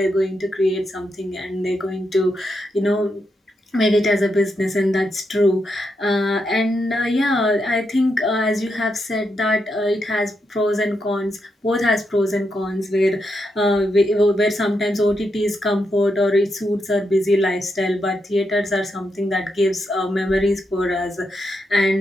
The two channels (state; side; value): normal; both; correlation 0.83